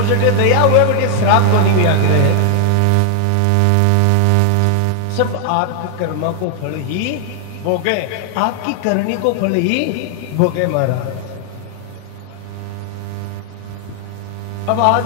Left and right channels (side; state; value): both; different; correlation 0.00